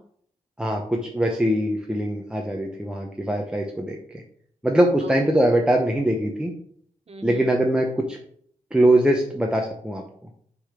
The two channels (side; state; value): both; normal; correlation 0.86